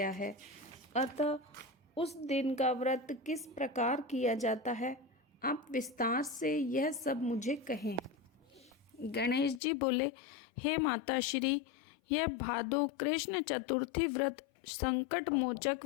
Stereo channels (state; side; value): drops out; right; at 9.6 s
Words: है, अतः उस दिन का व्रत किस प्रकार किया जाता है, आप विस्तार से यह सब मुझे कहें। गणेश जी बोले, हे माता श्री, यह भादो कृष्ण चतुर्थी व्रत संकट मोचक,